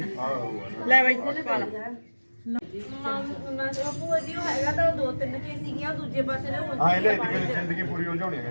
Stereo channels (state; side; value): inverted; both; correlation -1.00